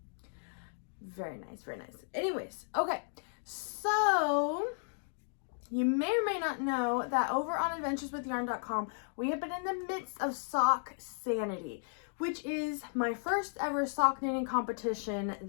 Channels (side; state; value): right; silent; digital silence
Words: Very nice, very nice. Anyways, okay. So you may or may not know that over on adventureswithyarn.com, we have been in the midst of Sock Sanity, which is my first ever sock knitting competition